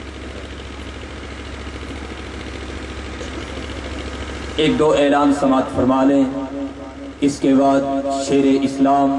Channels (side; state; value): both; identical; correlation 1.00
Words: ایک دو اعلان سماعت فرما لیں، اس کے بعد شیر